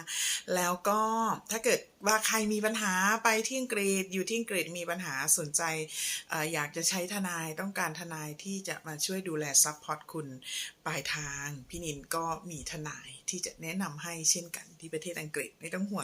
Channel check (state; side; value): identical; both; correlation 1.00